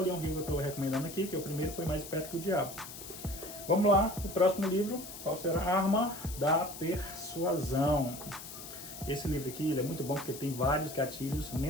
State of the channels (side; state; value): left; noise; hiss, 12 dB below the sound